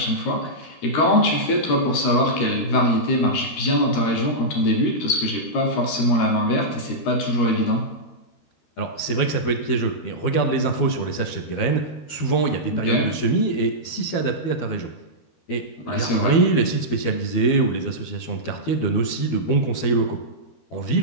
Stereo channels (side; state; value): right; late; 13 ms